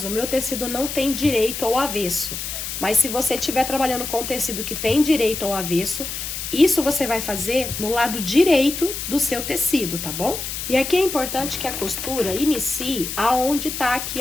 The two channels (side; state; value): left; noise; hiss, 6 dB below the sound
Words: o meu tecido não tem direito ao avesso, mas se você estiver trabalhando com tecido que tem direito ao avesso, isso você vai fazer no lado direito do seu tecido, tá bom? E aqui é importante que a costura inicie aonde tá aqui